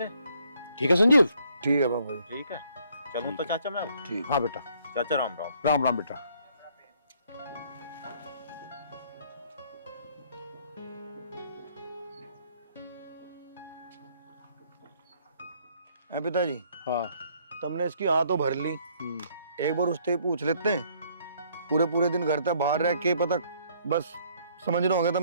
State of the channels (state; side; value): inverted; both; correlation -0.65